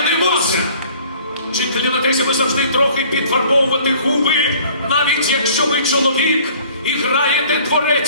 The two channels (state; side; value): inverted; both; correlation -0.52